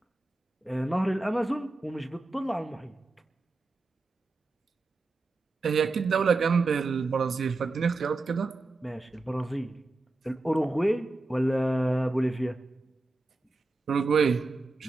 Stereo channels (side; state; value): left; quieter; 3.3 dB